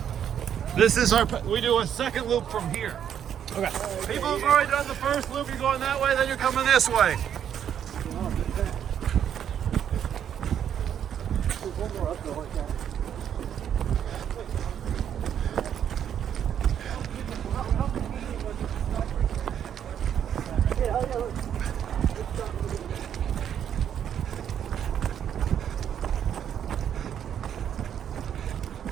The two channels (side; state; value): left; quieter; 9.2 dB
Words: This is our, we do a second loop from here. Okay. People who've already done the first loop, you're going that way, then you're coming this way. There's one more uphill like that.